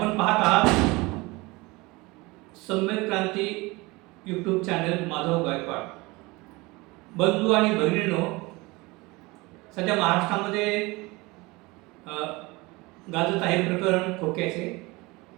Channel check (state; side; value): quieter; left; 23.4 dB